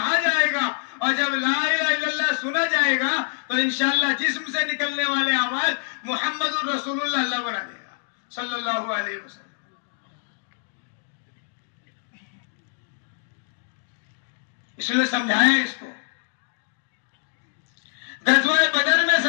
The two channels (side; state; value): right; silent; digital silence